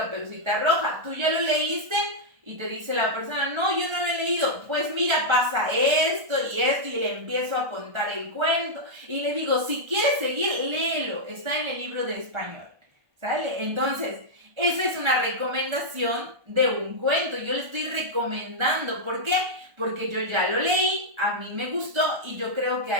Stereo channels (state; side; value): late; left; 1.3 ms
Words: Roja. ¿Tú ya lo leíste? Y te dice la persona, no, yo no lo he leído. Pues mira, pasa esto y esto y le empiezo a contar el cuento. Y le digo, si quieres seguir, léelo. Está en el libro de español. ¿Sale? Entonces, esa es una recomendación de un cuento. Yo le estoy recomendando. ¿Por qué? Porque yo ya lo leí, a mí me gustó y yo creo que